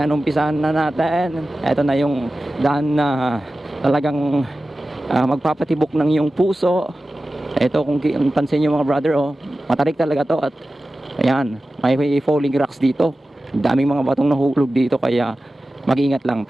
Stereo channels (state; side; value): normal; both; correlation 0.95